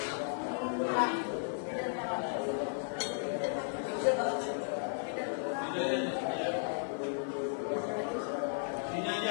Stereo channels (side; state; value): right; silent; 54 dB below the other